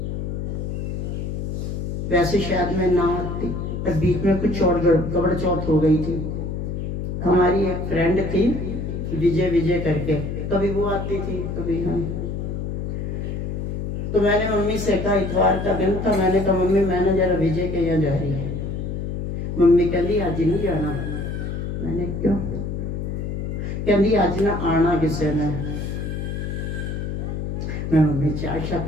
वैसे शायद मैं ना आती, पर बीच में कुछ और गड़बड़ चौथ हो गई थी। हमारी एक फ्रेंड थी विजय करके, कभी वो आती थी कभी हम। तो मैंने मम्मी से कहा, इतवार का दिन था, मैंने कहा मम्मी मैंने जरा विजय के यहाँ जा रही है। मम्मी कहती आज नहीं जाना। मैंने क्यों? कहती आज ना आना किसी ने। मैं मम्मी चाय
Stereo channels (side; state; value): left; noise; hum, 4 dB below the sound